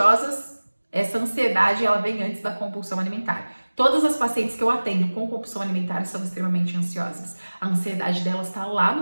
essa ansiedade ela vem antes da compulsão alimentar. Todas as pacientes que eu atendo com compulsão alimentar são extremamente ansiosas. A ansiedade delas está lá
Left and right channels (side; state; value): both; inverted; correlation -1.00